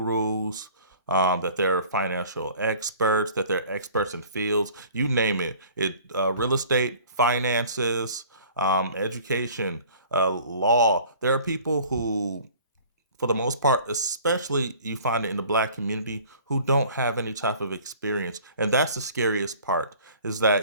that they're financial experts, that they're experts in fields, you name it. Real estate, finances, education, law. There are people who, for the most part, especially you find it in the Black community, who don't have any type of experience. And that's the scariest part, is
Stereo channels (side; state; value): both; inverted; correlation -0.49